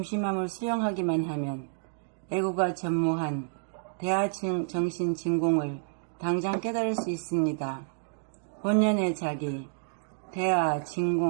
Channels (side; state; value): left; silent; digital silence